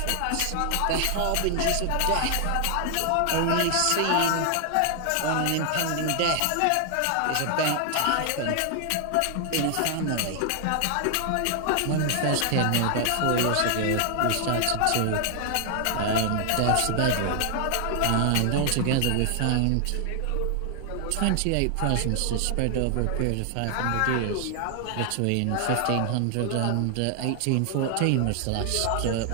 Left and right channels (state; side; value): different; both; correlation 0.00